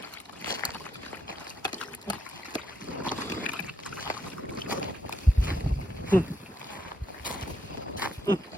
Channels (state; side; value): normal; both; correlation 0.78